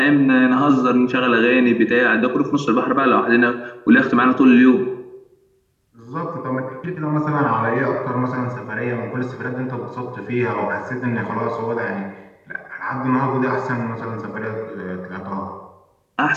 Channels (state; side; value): identical; both; correlation 1.00